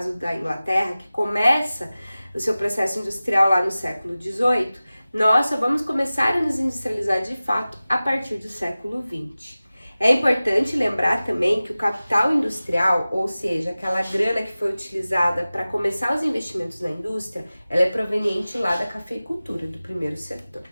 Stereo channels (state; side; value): inverted; both; correlation -0.97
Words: da Inglaterra, que começa o seu processo industrial lá no século XVIII, nós só vamos começar a nos industrializar de fato a partir do século XX. É importante lembrar também que o capital industrial, ou seja, aquela grana que foi utilizada para começar os investimentos na indústria, ela é proveniente lá da cafeicultura, do primeiro setor.